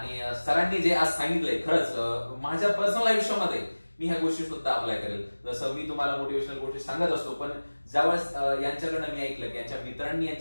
सरांनी जे आज सांगितलंय खरंच माझ्या पर्सनल आयुष्यामध्ये मी ह्या गोष्टी सुद्धा अप्लाय करेल. जसं मी तुम्हाला मोटिवेशनल गोष्टी सांगत असतो, पण ज्यावेळेस यांच्याकडनं मी ऐकलं की यांच्या मित्रांनी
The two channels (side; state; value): both; inverted; correlation -1.00